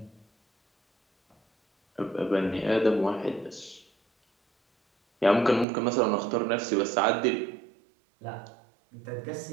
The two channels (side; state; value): left; drops out; at 5.7 s